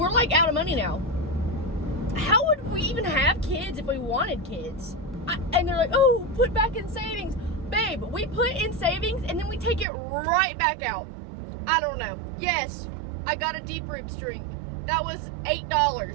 like out of money now. How would we even have kids if we wanted kids? And they're like, oh, put back in savings. Babe, we put in savings and then we take it right back out. I don't know. Yes, I got a Deep Roots drink. That was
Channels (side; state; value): left; drops out; at 9.9 s